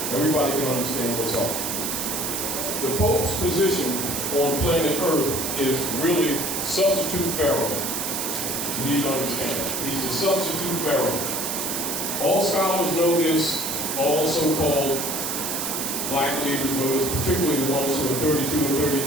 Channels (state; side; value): noise; right; hiss, 2 dB below the sound